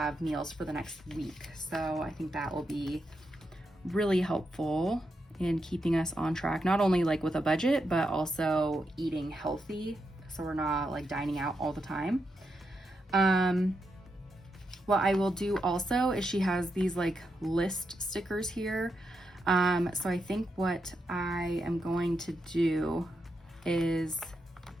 meals for the next week. So I think that will be really helpful in keeping us on track, not only like with a budget, but also eating healthy, so we're not like dining out all the time. What I will do also is she has these like list stickers here. So I think what I am going to do is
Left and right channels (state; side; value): normal; both; correlation 0.84